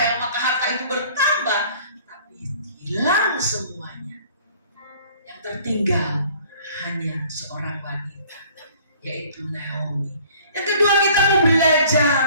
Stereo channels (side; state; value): both; inverted; correlation -0.53